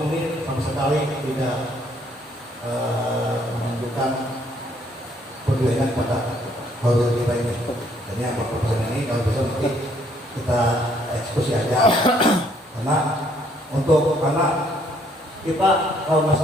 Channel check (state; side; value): normal; both; correlation 0.66